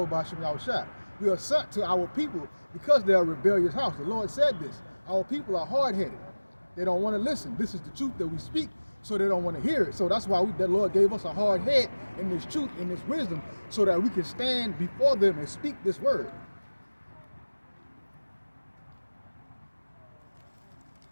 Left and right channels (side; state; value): both; inverted; correlation -1.00